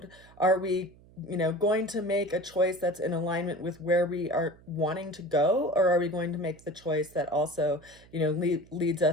Are we, you know, going to make a choice that's in alignment with where we are wanting to go, or are we going to make the choice that also, you know, leads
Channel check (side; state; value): right; noise; hum, 25 dB below the sound